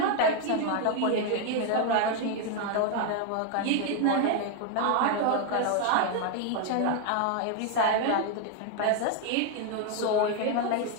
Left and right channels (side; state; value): both; different; correlation 0.01